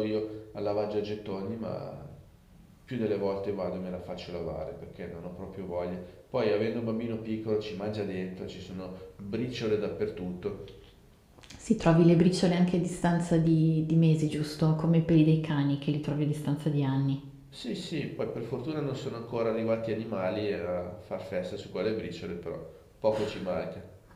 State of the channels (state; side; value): identical; both; correlation 1.00